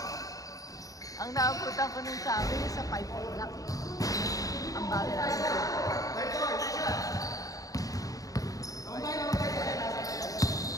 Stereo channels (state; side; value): late; right; 0.17 ms